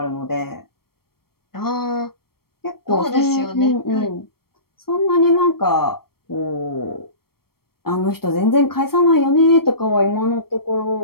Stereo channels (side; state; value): right; late; 0.94 ms